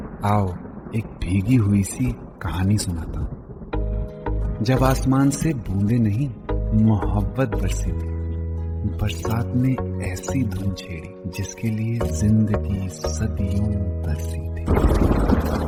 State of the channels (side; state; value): both; identical; correlation 1.00